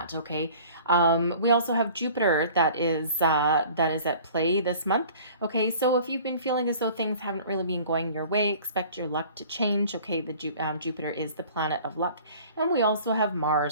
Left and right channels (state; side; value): inverted; both; correlation -0.47